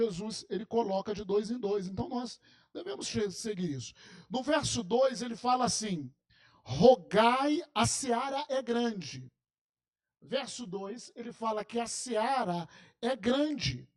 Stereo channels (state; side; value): identical; both; correlation 1.00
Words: ele coloca de 2 em 2. Então nós devemos seguir isso. No verso 2 ele fala assim: rogai, a seara é grande. Verso 2 ele fala que a seara é grande,